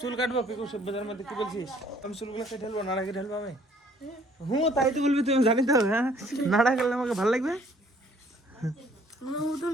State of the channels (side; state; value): both; normal; correlation 0.60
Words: কাটবো পিকু, শিব পূজার মধ্যে কি বলছিস? আমি চুলগুলো কেটে ঢেলবো, নাড়া কেটে ঢেলবো আমি। হুঁ তাই তো বলবি, তুমি জানি তো। হ্যাঁ নাড়া খেলে আমাকে ভালো লাগবে। আমার মতন